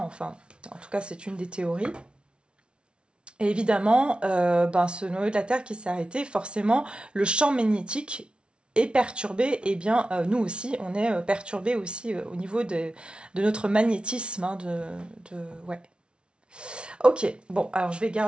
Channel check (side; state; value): left; late; 0.057 ms